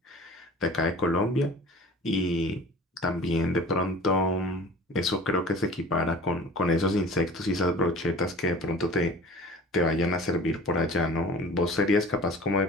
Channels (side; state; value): both; normal; correlation 0.42